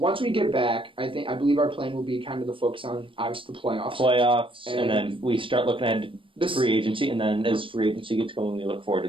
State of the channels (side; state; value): left; late; 0.25 ms